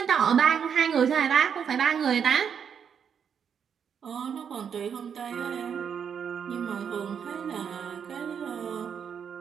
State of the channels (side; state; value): left; quieter; 7.5 dB